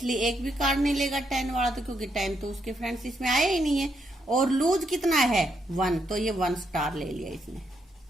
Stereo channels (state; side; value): normal; both; correlation 0.78